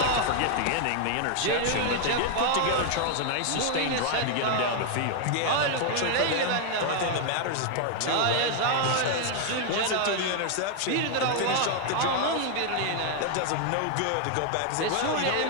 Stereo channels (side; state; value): both; different; correlation 0.00